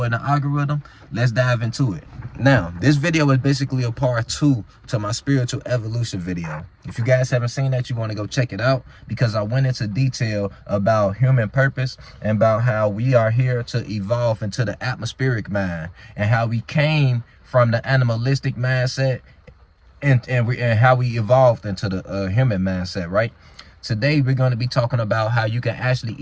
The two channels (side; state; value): both; identical; correlation 1.00